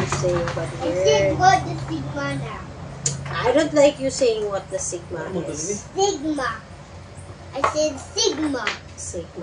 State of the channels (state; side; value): identical; both; correlation 1.00